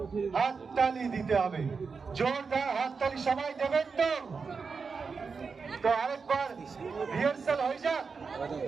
হাততালি দিতে হবে, জোরদার হাততালি সবাই দেবেন তো? তো আরেকবার রিহার্সাল হয়ে যাক।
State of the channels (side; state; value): left; quieter; 5.1 dB